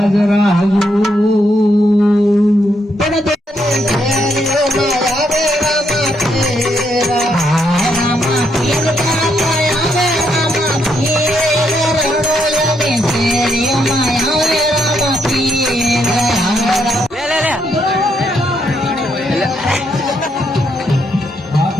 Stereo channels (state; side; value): normal; both; correlation 0.77